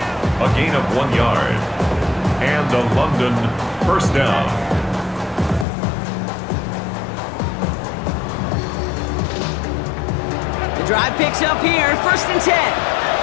A gain of 1 yard. And a London first down. The drive picks up here. 1st and 10.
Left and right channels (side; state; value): right; drops out; at 5.7 s